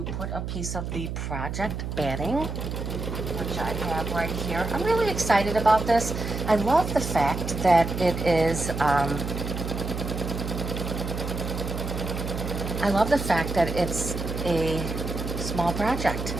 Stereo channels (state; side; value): noise; right; hum, 5 dB below the sound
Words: put a piece of the project batting, which I have right here. I'm really excited about this. I love the fact that it is, it's a small project.